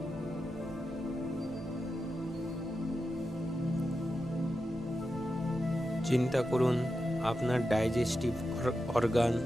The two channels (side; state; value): both; normal; correlation 0.89